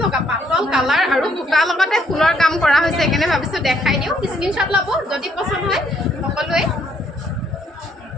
লগা পাতল কালাৰ আৰু বুটাৰ লগতে ফুলৰ কাম কৰা হৈছে সেইকাৰণে ভাবিছোঁ দেখাই দিওঁ স্ক্ৰীনশ্বট ল'ব যদি পচন্দ হয় সকলোৱে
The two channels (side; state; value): both; normal; correlation 0.68